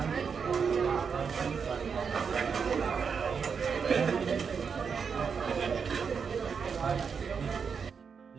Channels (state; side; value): quieter; left; 6.1 dB